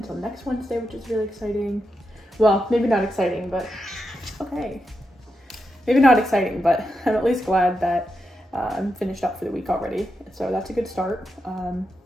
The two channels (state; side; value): normal; both; correlation 0.86